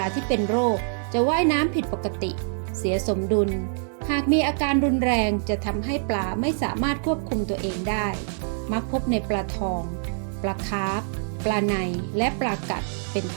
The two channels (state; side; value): silent; left; digital silence